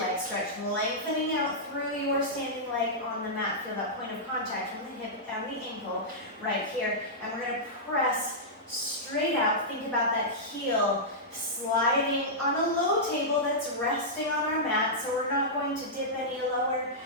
leg stretch, lengthening out through your standing leg on the mat. Feel that point of contact from the hip and the ankle right here. And we're going to press straight out. Think about that heel sliding on a low table that's resting on our mat. So we're not going to dip any lower.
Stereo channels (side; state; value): both; normal; correlation -0.11